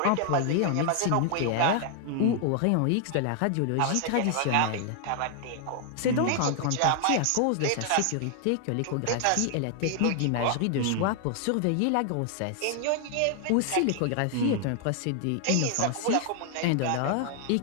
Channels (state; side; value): different; both; correlation 0.00